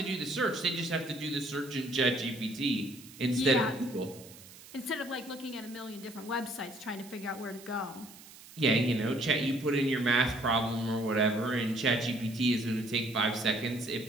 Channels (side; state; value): right; noise; hiss, 19 dB below the sound